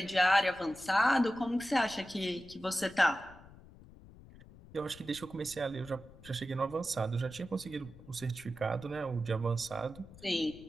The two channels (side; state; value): left; noise; rumble, 20 dB below the sound